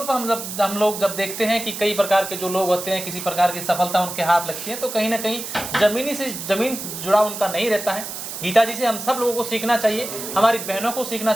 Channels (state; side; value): noise; right; hiss, 8 dB below the sound